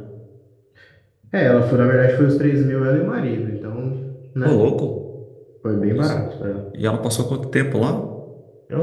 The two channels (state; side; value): identical; both; correlation 1.00